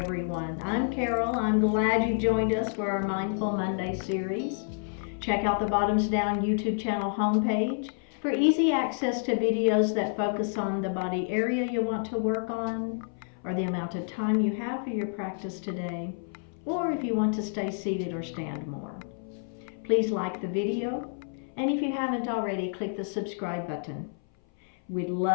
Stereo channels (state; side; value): silent; right; 58 dB below the other